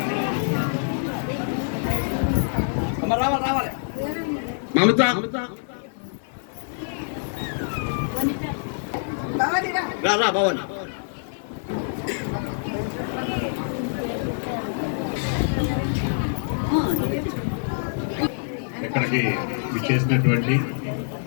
రావాలి మమత రా భవన్ ఇక్కడికి విచ్చేసినటువంటి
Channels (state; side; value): silent; right; digital silence